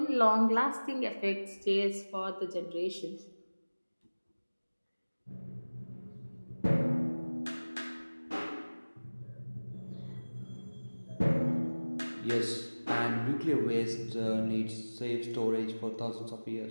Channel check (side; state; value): both; inverted; correlation -1.00